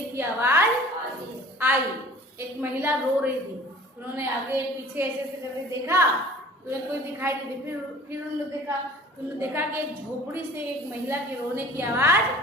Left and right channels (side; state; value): both; normal; correlation 0.46